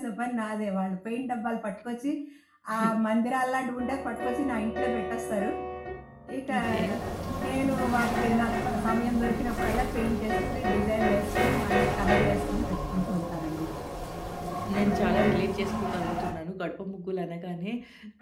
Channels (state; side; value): identical; both; correlation 1.00